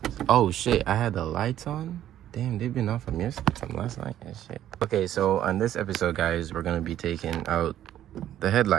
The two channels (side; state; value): left; quieter; 11.8 dB